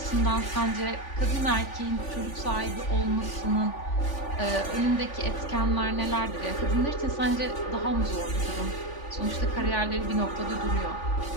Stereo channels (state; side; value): late; right; 3.5 ms